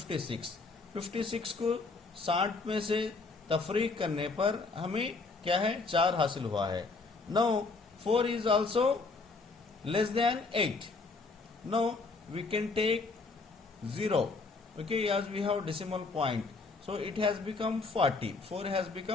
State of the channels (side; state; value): right; quieter; 4.0 dB